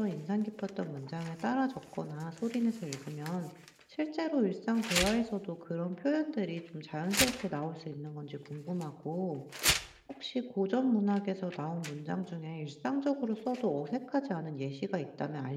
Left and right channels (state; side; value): identical; both; correlation 1.00